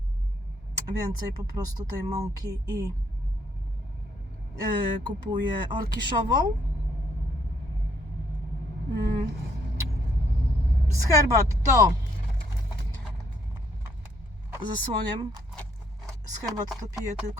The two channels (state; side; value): normal; both; correlation 0.69